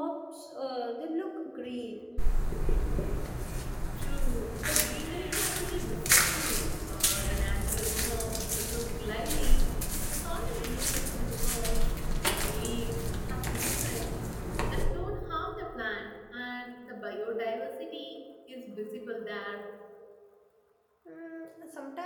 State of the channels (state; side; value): identical; both; correlation 1.00